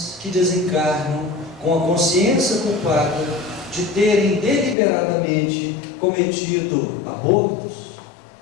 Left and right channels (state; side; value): drops out; right; at 4.8 s